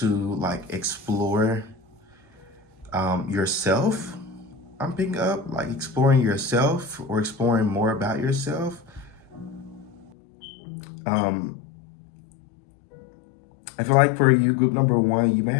like explore yourself. I'm picking up like exploring yourself or exploring more about yourself. I feel like for you, group number 1, you may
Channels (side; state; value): right; drops out; at 10.1 s